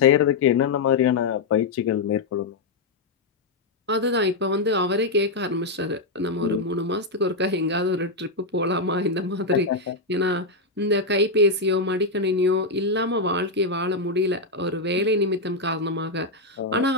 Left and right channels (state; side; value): quieter; right; 3.3 dB